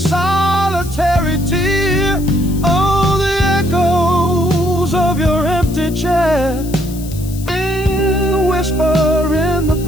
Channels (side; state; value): left; noise; hiss, 17 dB below the sound